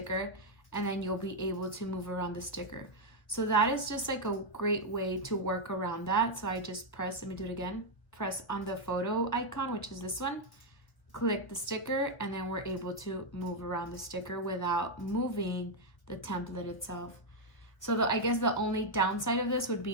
and then you'll be able to move around the sticker. So that is just like a great way to work around that. So I just press, let me do it again, press on the photo icon, which is this one, click the sticker, and then we're able to move around the sticker without moving the template itself. So I guess the only downside of this would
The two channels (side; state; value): right; late; 1.3 ms